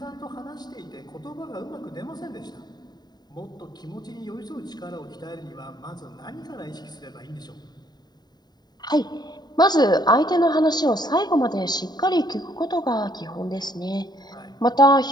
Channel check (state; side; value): late; right; 0.20 ms